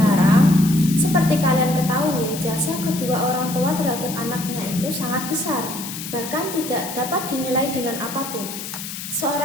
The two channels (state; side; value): noise; left; hiss, 9 dB below the sound